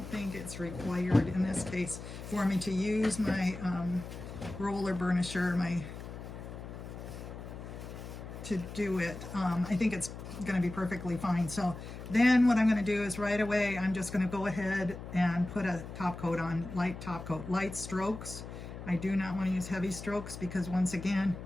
think it's required in this case for me to use my roller burnisher to do it. I think it's going to be perfectly fine. So then what I'm going to do is right away I'm just going to go ahead and put a top coat on, light top coat, light strokes. I do not want to use heavy strokes because once again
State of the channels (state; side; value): noise; left; hum, 11 dB below the sound